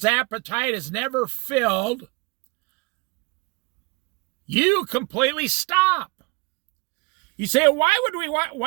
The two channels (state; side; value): quieter; left; 26.9 dB